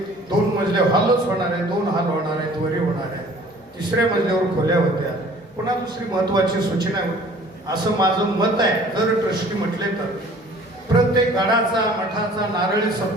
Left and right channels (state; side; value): normal; both; correlation 0.51